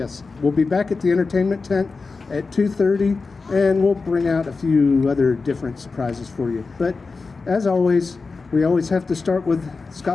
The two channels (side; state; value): right; quieter; 4.2 dB